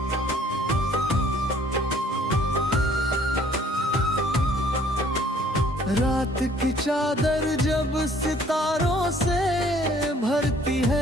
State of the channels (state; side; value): normal; both; correlation 0.58